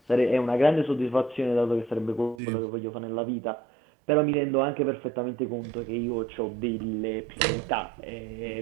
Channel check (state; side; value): drops out; left; at 2.4 s